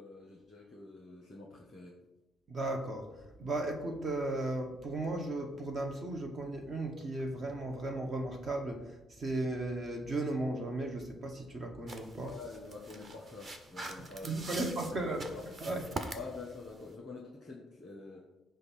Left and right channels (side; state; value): both; normal; correlation 0.71